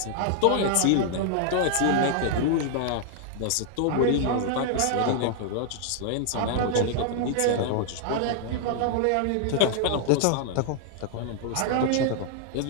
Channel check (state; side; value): different; both; correlation 0.00